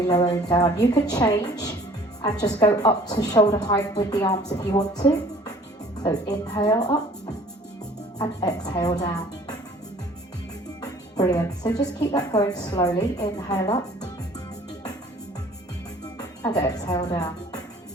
lowering down. You can change and just go up to shoulder height with the arms if you want to. So inhale up and exhale down. Brilliant. So just keep that going slowly. Inhale up and exhale down.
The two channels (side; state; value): both; normal; correlation 0.52